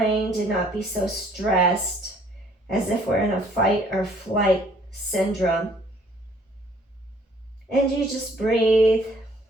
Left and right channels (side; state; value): both; normal; correlation 0.60